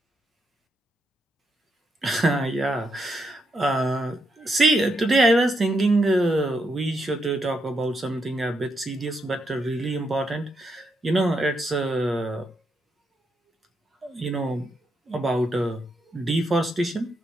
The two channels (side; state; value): both; normal; correlation 0.80